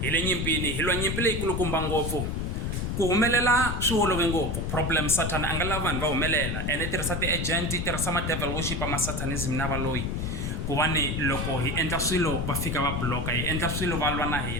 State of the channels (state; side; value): noise; left; rumble, 2 dB below the sound